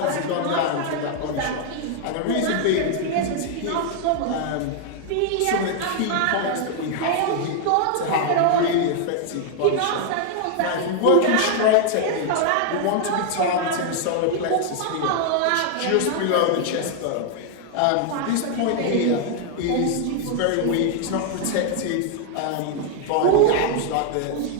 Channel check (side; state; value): both; different; correlation 0.00